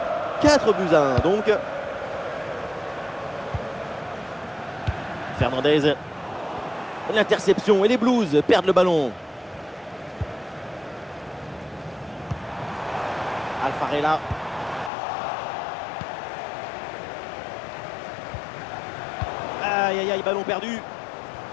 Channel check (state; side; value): drops out; right; at 14.9 s